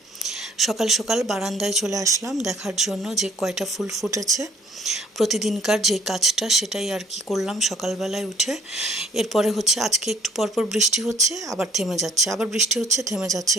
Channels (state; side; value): normal; both; correlation 0.59